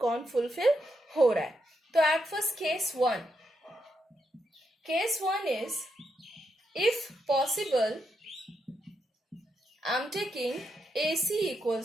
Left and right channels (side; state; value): both; normal; correlation 0.81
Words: कौन फुलफिल हो रहा है. तो at first Case 1 is, if possible, I am taking AC